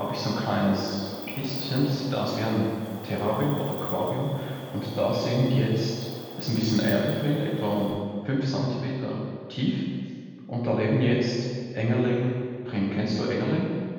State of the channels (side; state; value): both; identical; correlation 1.00